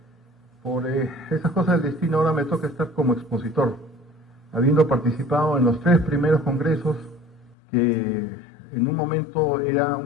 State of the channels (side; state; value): right; drops out; at 7.6 s